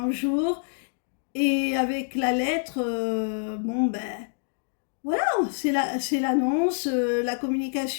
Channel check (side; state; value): right; silent; digital silence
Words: jour, et avec la lettre, bon, ben, voilà, c'est l'annonce, la